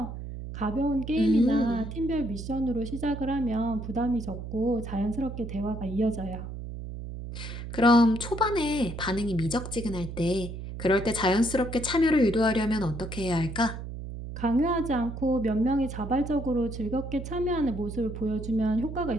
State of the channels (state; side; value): noise; right; hum, 8 dB below the sound